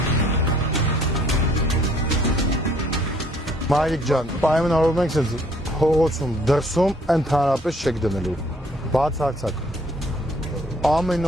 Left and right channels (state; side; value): normal; both; correlation 0.62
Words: Մայրիկ ջան, պայմանավորվում ենք սենց հողոցում, դրսում ընդհանրապես չեք դնելու, բացարձակ։